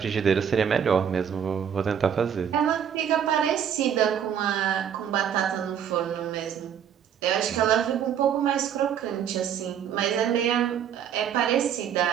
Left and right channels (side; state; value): left; quieter; 8.6 dB